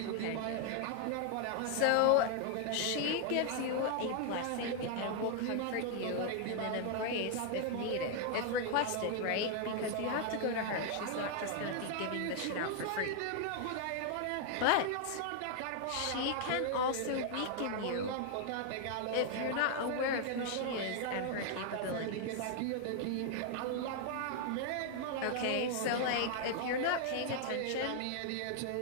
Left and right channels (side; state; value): both; different; correlation 0.00